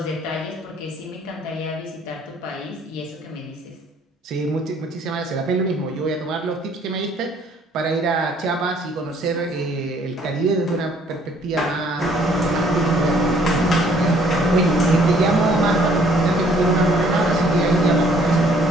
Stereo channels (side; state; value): both; normal; correlation 0.61